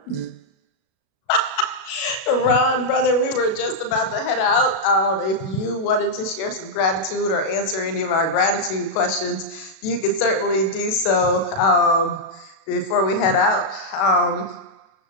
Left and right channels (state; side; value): late; right; 36 ms